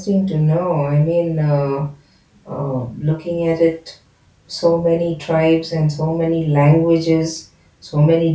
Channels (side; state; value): both; identical; correlation 1.00